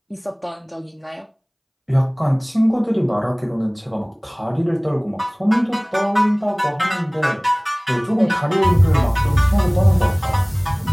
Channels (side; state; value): both; identical; correlation 1.00